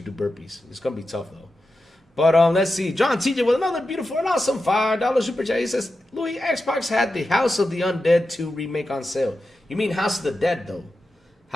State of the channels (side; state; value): both; normal; correlation 0.91